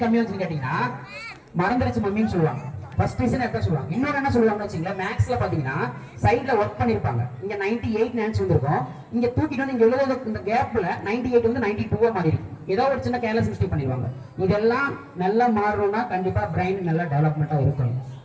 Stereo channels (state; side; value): identical; both; correlation 1.00